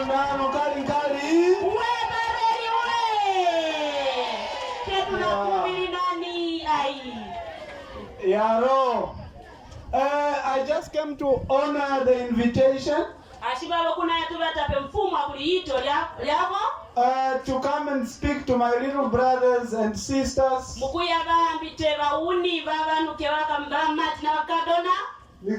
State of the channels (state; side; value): identical; both; correlation 1.00